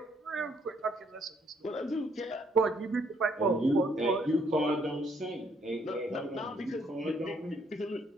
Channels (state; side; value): normal; both; correlation 0.68